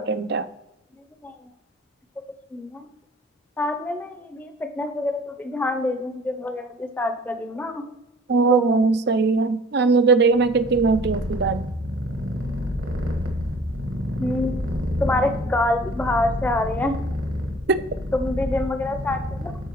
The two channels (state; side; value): normal; both; correlation 0.50